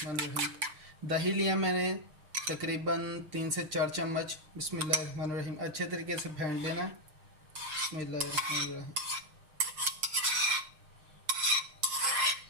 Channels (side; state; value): left; late; 6.7 ms